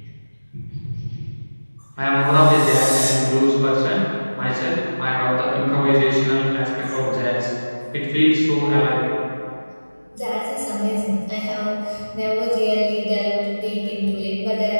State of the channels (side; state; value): both; inverted; correlation -1.00